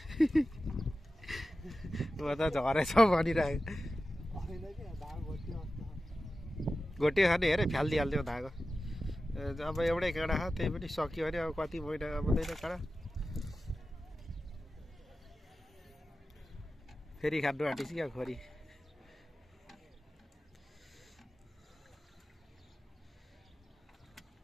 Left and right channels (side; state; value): both; normal; correlation 0.94